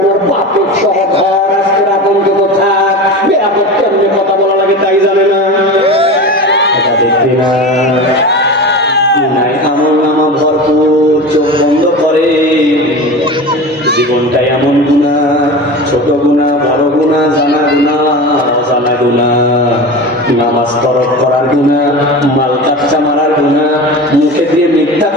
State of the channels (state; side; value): normal; both; correlation 0.29